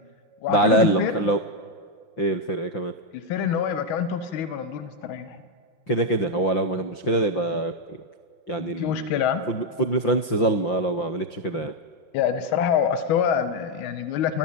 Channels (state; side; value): late; right; 5.8 ms